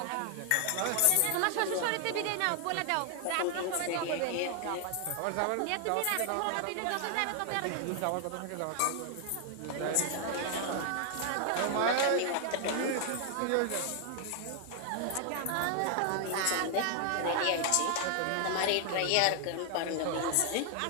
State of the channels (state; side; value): different; both; correlation 0.00